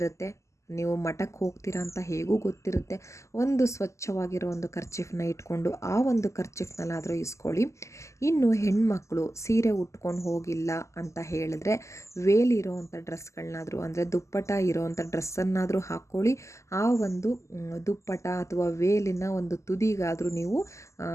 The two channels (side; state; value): right; late; 0.14 ms